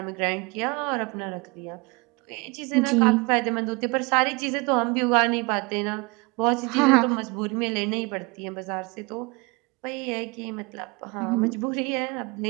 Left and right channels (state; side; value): quieter; left; 27.6 dB